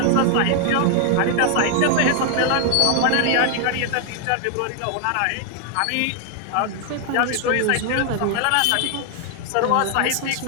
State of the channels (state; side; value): different; both; correlation 0.00